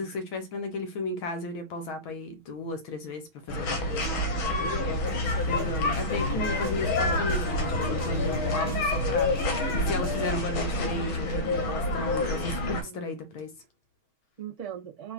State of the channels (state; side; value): late; right; 6.3 ms